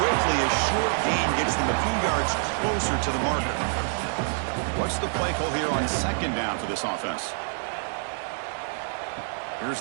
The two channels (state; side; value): silent; left; digital silence